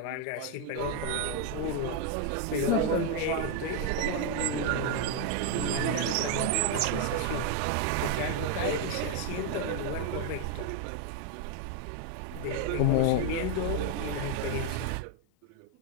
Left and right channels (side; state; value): both; different; correlation 0.01